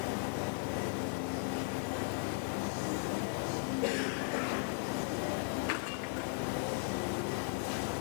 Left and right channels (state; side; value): silent; right; 53 dB below the other